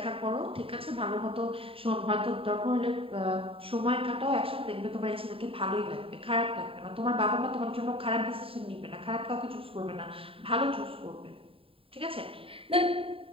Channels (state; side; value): late; left; 0.27 ms